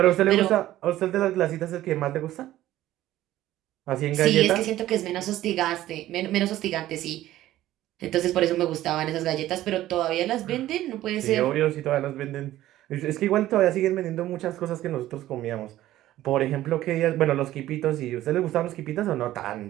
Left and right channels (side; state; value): left; quieter; 14.4 dB